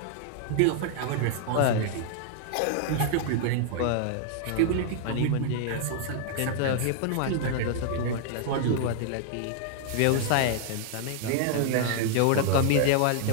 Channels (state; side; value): different; both; correlation 0.00